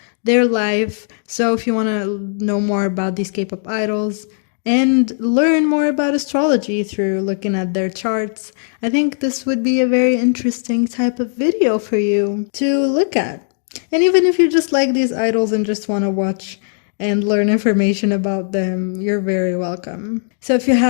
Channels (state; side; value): silent; right; digital silence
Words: their life. So if you want to know more about these K-pop idols and learn more about astrology through looking at their charts, I think this would be a very interesting type of video for you to look at. And even if you just like these idols and just want to watch and learn information about them, you're very welcome. So if you